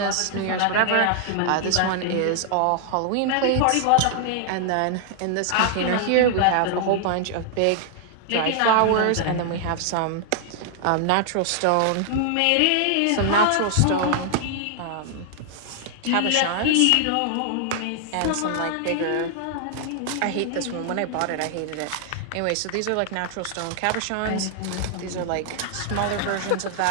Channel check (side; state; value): both; different; correlation 0.00